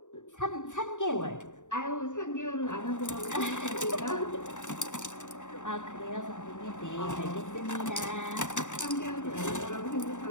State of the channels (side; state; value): right; late; 0.86 ms